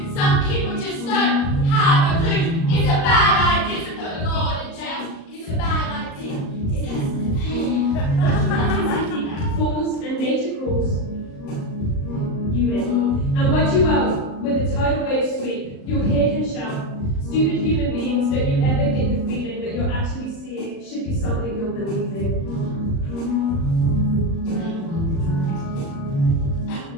something you're believing.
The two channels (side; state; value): right; late; 37 ms